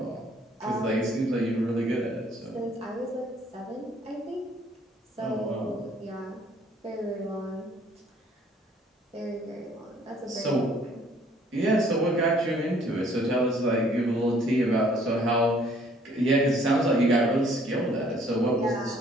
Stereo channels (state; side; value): normal; both; correlation 0.60